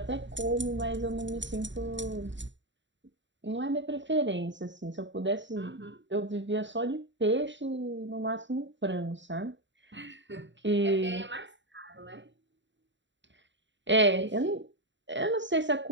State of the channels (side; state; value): left; late; 0.54 ms